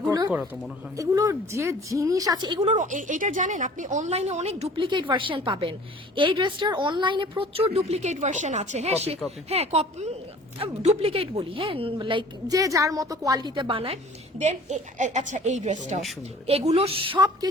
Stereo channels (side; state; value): both; normal; correlation 0.48